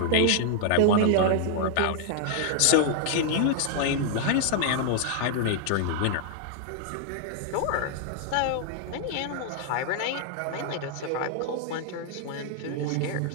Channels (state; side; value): different; both; correlation -0.01